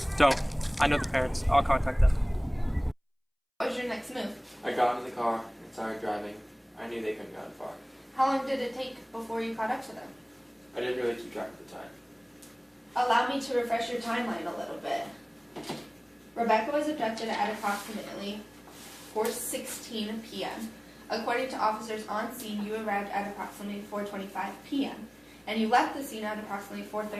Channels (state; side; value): identical; both; correlation 1.00